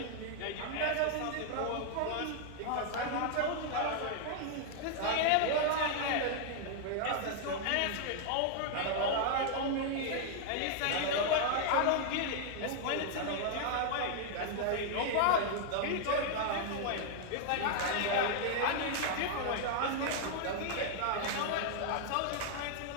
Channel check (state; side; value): different; both; correlation -0.01